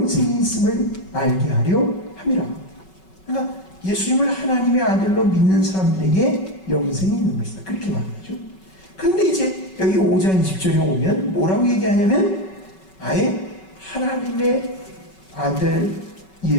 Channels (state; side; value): late; right; 5.3 ms